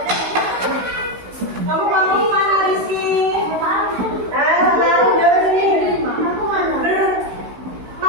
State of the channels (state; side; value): late; left; 16 ms